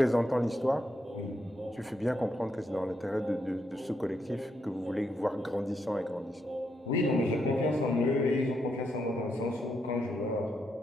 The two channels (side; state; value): both; normal; correlation 0.80